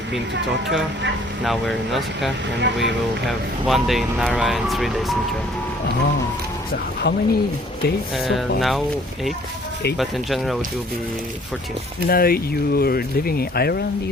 been to Tokyo. Now we're in Osaka, and we will have 1 day in Nara and 3 days in Kyoto. Oh, so how many days so far? Now 8. 8? But in general it will be 14. Now you're living in Ireland,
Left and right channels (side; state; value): both; normal; correlation 0.57